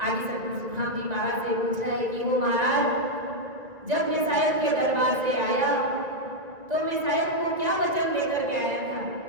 सद्गुरु सुखराम जी महाराज से पूछा है कि वो महाराज, जब मैं साहेब के दरबार से आया तो मैं साहेब को क्या वचन देकर के आया था,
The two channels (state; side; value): late; left; 1.9 ms